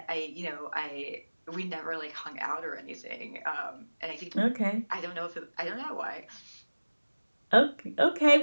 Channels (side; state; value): both; inverted; correlation -1.00